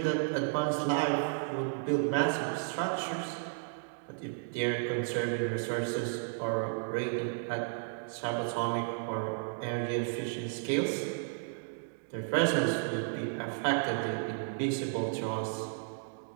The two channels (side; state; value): left; silent; digital silence